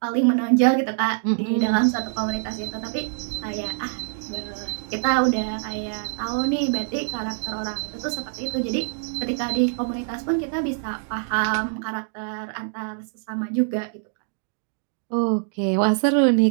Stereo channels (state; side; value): silent; left; digital silence